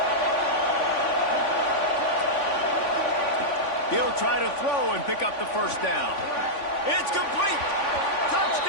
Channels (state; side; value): late; right; 3.5 ms